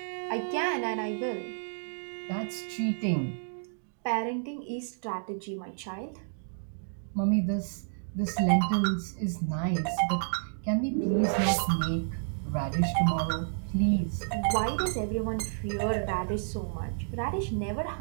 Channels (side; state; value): left; silent; digital silence